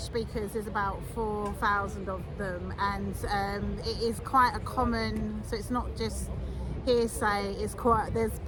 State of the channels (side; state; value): both; identical; correlation 1.00